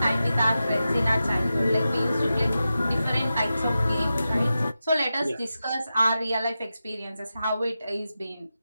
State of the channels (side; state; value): both; inverted; correlation -0.92